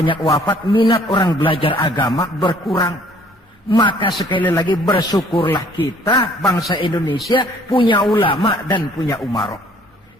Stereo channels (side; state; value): both; normal; correlation 0.58